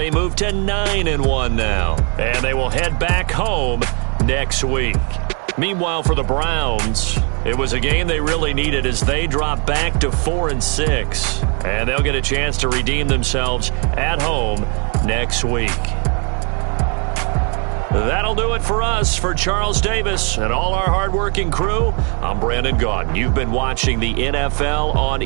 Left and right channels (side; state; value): left; quieter; 35.7 dB